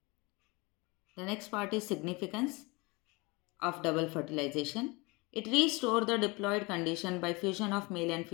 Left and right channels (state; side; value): quieter; right; 26.2 dB